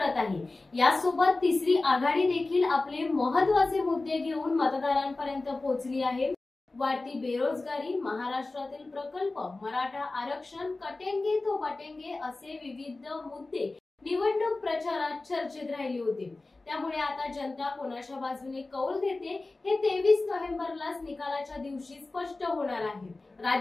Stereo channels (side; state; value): right; quieter; 3.2 dB